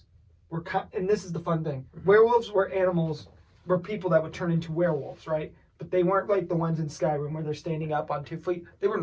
were, and this is the fun thing, werewolves were people that would turn into werewolves, right? But they weren't like the ones in Skyrim where they're standing up on 2 feet. They were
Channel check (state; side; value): identical; both; correlation 1.00